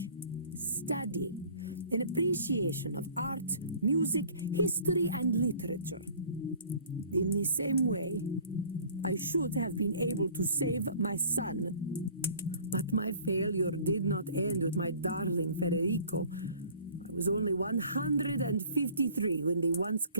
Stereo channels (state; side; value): inverted; both; correlation -0.50